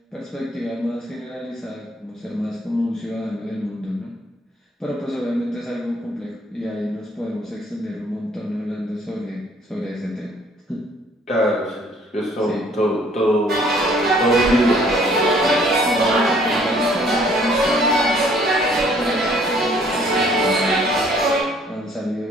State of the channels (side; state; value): both; normal; correlation 0.60